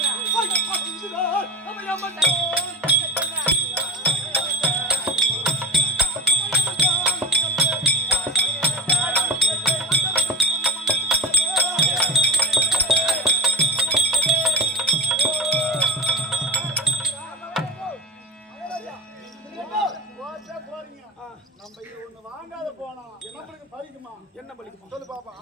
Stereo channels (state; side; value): normal; both; correlation 0.27